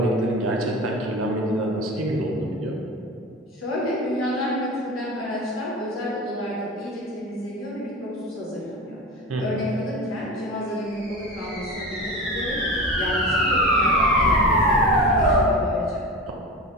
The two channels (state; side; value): normal; both; correlation 0.30